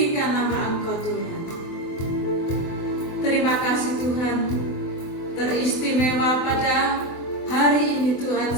nama Engkau Tuhan. Terima kasih Tuhan, teristimewa pada hari ini Tuhan.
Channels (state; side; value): late; right; 24 ms